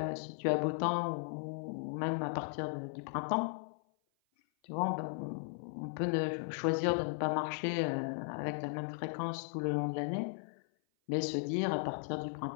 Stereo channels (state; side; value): silent; right; 53 dB below the other